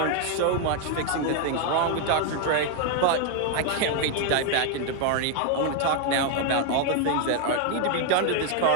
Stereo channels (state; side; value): different; both; correlation 0.01